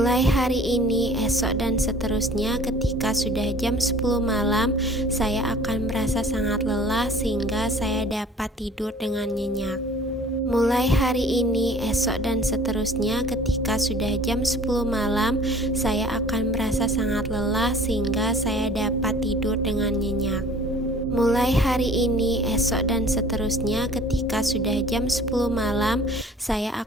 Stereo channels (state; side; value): normal; both; correlation 0.50